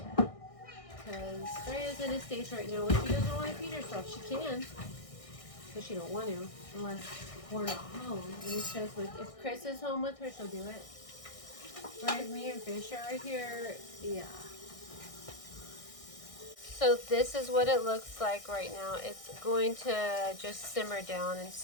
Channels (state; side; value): late; right; 1.6 ms